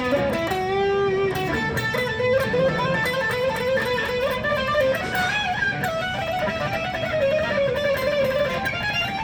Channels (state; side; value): identical; both; correlation 1.00